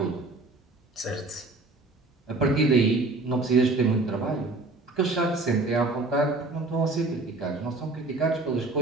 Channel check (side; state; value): left; quieter; 3.2 dB